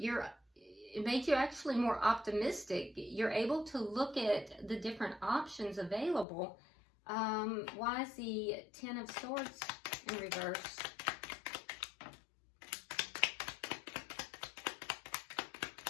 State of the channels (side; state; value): right; drops out; at 6.2 s